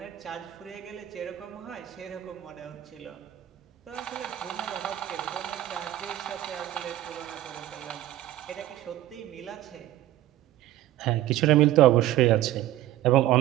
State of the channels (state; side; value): quieter; left; 14.3 dB